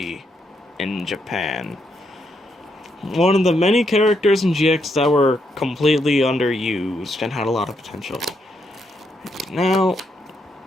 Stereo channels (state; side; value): normal; both; correlation 0.78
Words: in Japan. One of the many characters in GX that were completely underused and had a lot of potential. Now,